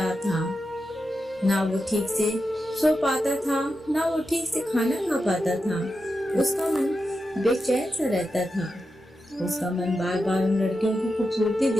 था। ना वो ठीक से सो पाता था, ना वो ठीक से खाना खा पाता था। उसका मन बेचैन सा रहता था। उसका मन बार बार उन लड़कियों की खूबसूरती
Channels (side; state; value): both; normal; correlation 0.88